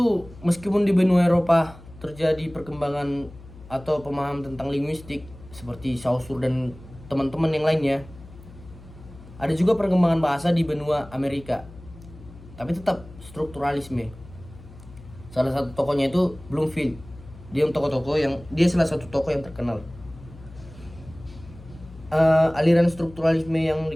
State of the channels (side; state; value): left; noise; hum, 19 dB below the sound